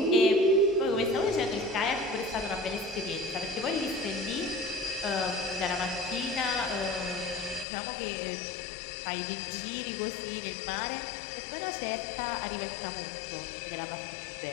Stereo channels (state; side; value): drops out; right; at 7.7 s